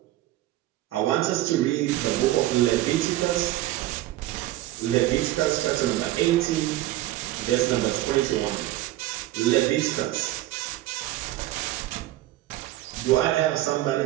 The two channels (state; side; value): quieter; left; 15.6 dB